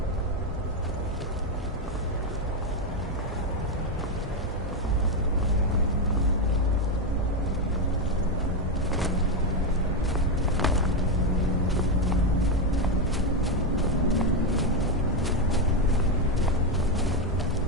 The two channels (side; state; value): both; normal; correlation 0.07